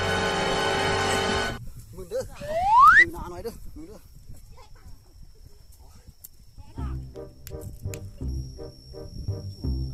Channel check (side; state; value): both; identical; correlation 1.00